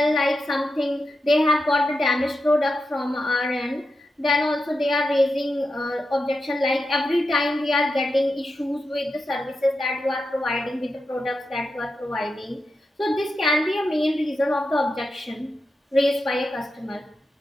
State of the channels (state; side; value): normal; both; correlation 0.88